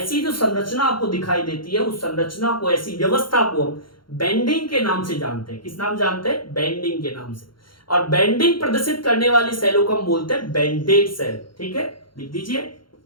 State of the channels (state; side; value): late; right; 0.73 ms